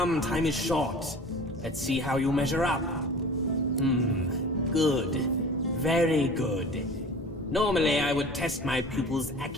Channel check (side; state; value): both; normal; correlation 0.41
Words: time is short. Let's see how you measure up. Good. Very good. Normally I would test my pupil's